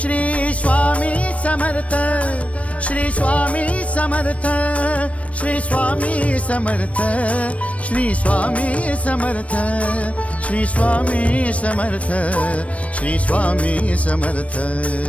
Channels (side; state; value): right; late; 0.064 ms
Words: श्री स्वामी समर्थ, श्री स्वामी समर्थ, श्री स्वामी समर्थ, श्री स्वामी समर्थ, श्री स्वामी समर्थ, श्री स्वामी समर्थ,